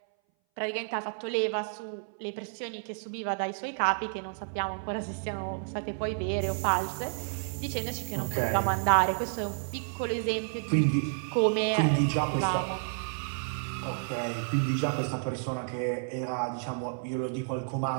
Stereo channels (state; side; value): silent; left; 57 dB below the other